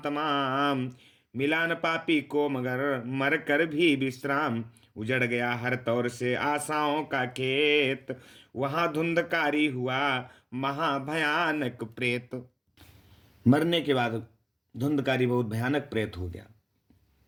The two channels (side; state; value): both; identical; correlation 1.00